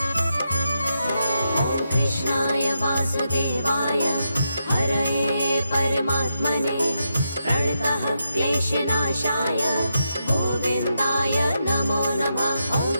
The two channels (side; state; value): both; inverted; correlation -0.84